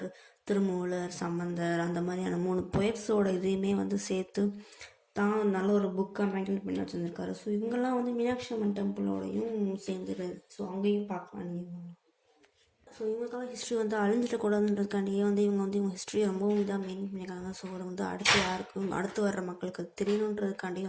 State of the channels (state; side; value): identical; both; correlation 1.00